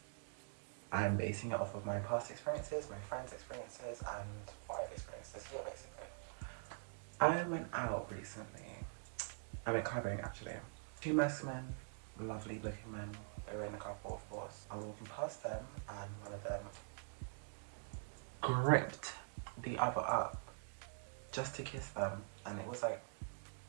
I'm basing it off of my past experiences, my friends' experiences, and what I've experienced this year, basically. I went out recently. I went clubbing, actually. Two masc men, lovely looking men. They were in a couple, of course. I was walking past them, and one of them gripped the other up just to kiss them, and it was like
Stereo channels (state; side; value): silent; left; digital silence